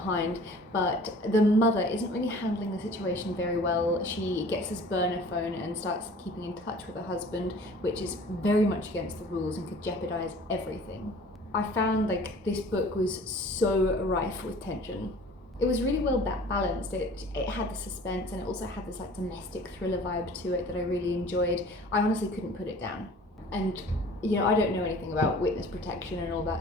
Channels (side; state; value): both; normal; correlation 0.47